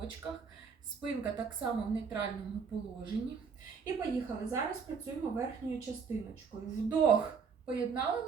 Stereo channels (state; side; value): quieter; left; 5.8 dB